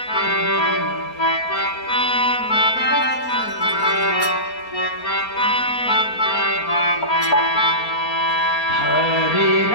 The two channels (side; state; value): right; late; 4.3 ms